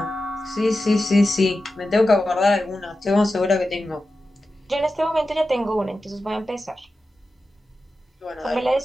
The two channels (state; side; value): normal; both; correlation 0.92